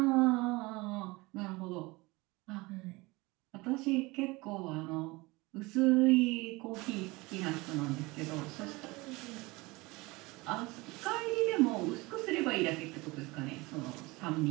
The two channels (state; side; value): quieter; left; 23.1 dB